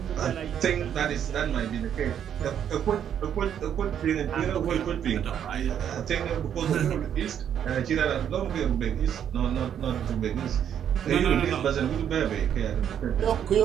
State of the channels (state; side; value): quieter; left; 9.2 dB